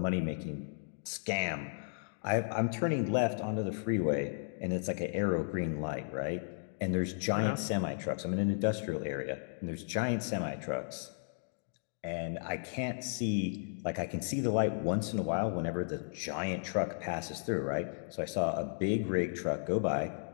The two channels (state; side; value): silent; right; digital silence